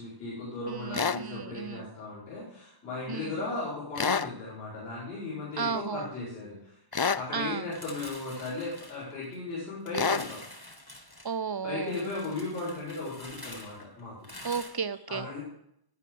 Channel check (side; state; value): left; late; 1.1 ms